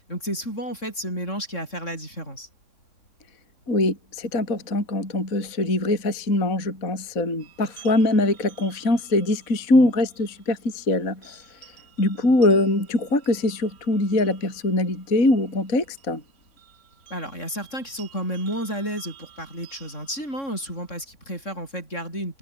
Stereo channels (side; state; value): right; late; 3.6 ms